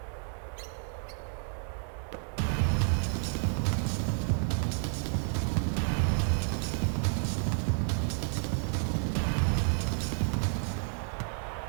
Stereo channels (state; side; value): silent; left; 56 dB below the other